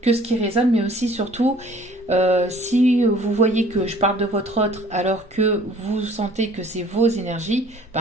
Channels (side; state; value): both; normal; correlation 0.54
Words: ce qui résonne, mais aussi surtout si vous voyez que je parle de votre autre alors que vous sentez que c'est vos énergies,